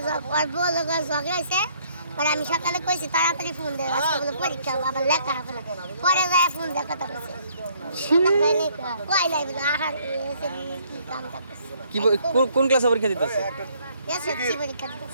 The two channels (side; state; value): both; inverted; correlation -0.64